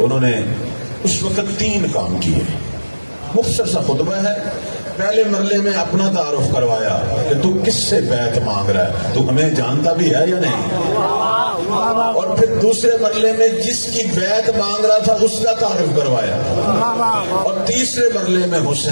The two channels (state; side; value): inverted; both; correlation -1.00